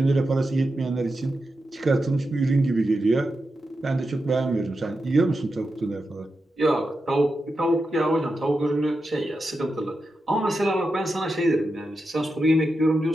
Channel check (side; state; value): both; normal; correlation 0.89